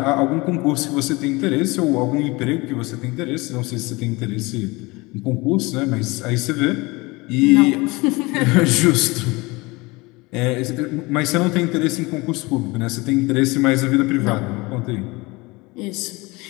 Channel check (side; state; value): right; quieter; 23.8 dB